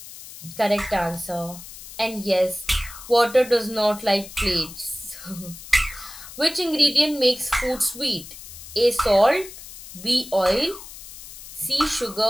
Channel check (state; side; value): noise; left; hiss, 15 dB below the sound